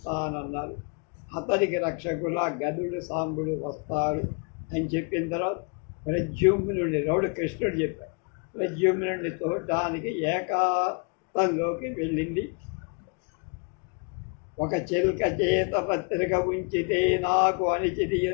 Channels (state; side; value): quieter; right; 36.6 dB